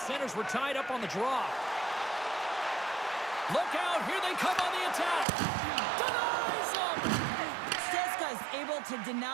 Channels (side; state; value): left; drops out; at 5.2 s